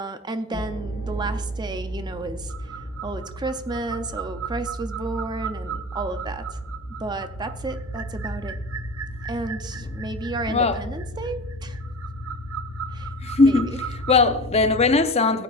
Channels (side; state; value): both; normal; correlation 0.36